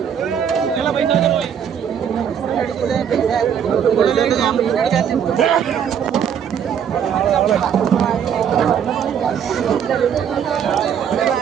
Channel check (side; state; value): left; quieter; 8.2 dB